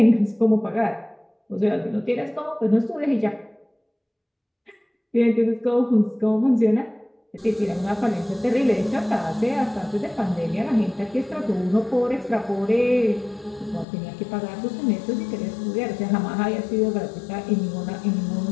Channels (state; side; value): drops out; right; at 13.9 s